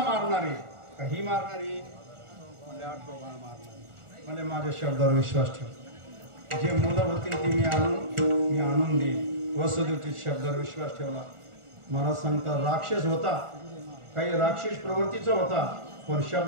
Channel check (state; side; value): late; left; 1.4 ms